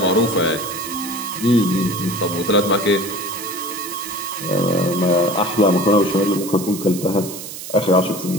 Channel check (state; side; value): noise; right; hiss, 10 dB below the sound